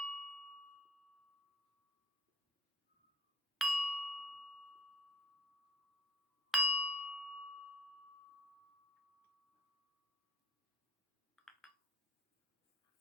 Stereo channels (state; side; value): normal; both; correlation 0.56